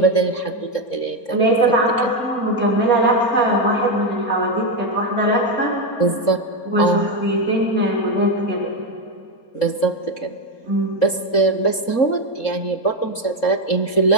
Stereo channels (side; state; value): right; late; 3.7 ms